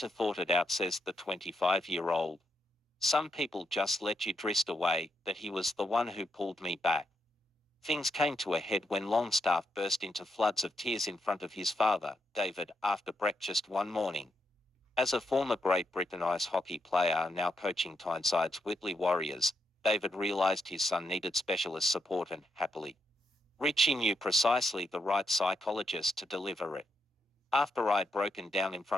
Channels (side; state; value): both; normal; correlation 0.81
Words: thought it out, says the 25-year-old. Some people just let you drift away, but he was the one who pulled me back. Things came to a head when Longstaff burst into floods of tears in front of his father, David, after breakfast one morning. As a former Great Britain ice hockey player now coaching Tynesyde's Whitley Warriors, David realised his son needed specialist support and, happily, Ritchie knew precisely the right psychologist to deliver it. After I'd broken down in